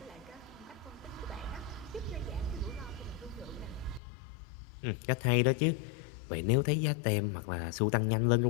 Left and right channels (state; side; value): drops out; right; at 4.0 s